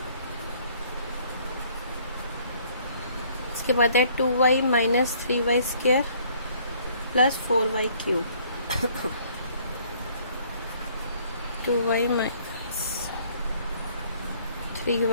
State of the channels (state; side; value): inverted; both; correlation -0.60